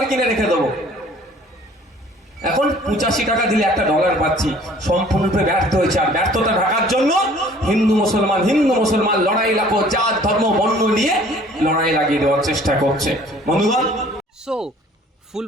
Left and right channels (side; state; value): both; normal; correlation 0.53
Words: কিনে রেখে দেবো। এখন 85 টাকা দিলে $1 পাচ্ছি, সম্পূর্ণরূপে ব্যর্থ হয়েছে। আর ব্যর্থতা ঢাকার জন্য হিন্দু মুসলমান লড়াই লাগো, জাত ধর্ম বর্ণ নিয়ে লড়াই লাগিয়ে দেওয়ার চেষ্টা করছে। বন্ধুগণ, সো ফুল